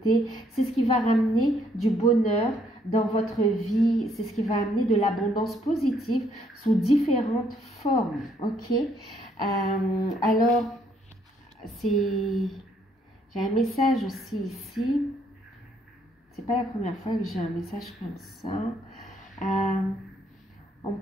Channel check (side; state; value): both; normal; correlation 0.69